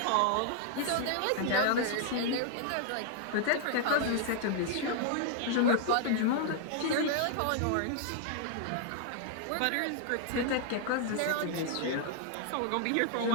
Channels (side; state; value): both; different; correlation 0.00